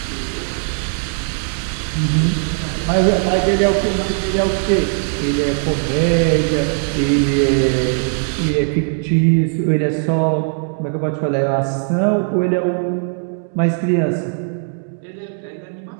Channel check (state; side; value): silent; left; 59 dB below the other